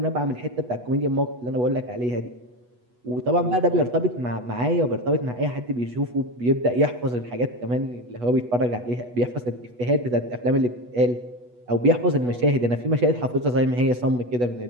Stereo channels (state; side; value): late; left; 8.2 ms